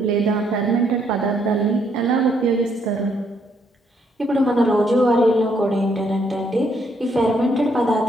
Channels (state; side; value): normal; both; correlation 0.72